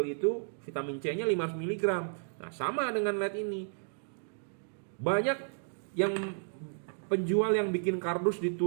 itu vitamin C-nya 500 mg? Nah, sama dengan LED ini. Banyak yang penjual yang bikin kardus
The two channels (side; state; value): left; silent; digital silence